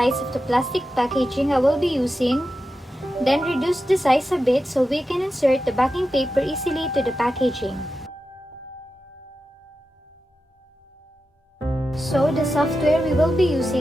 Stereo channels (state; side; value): normal; both; correlation 0.91